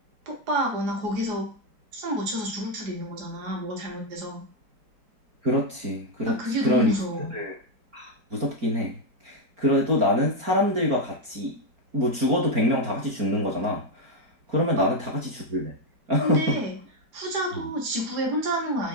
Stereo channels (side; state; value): left; late; 4.4 ms